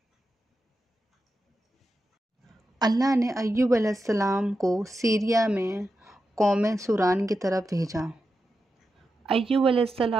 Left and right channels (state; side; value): normal; both; correlation 0.89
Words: اللہ نے ایوب علیہ السلام کو سیریا میں قوم سوران کی طرف بھیجا۔ ایوب علیہ